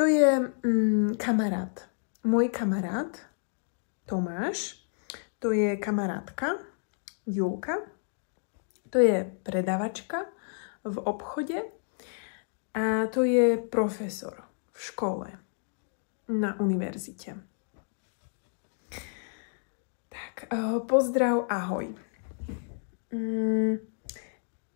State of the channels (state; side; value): silent; right; digital silence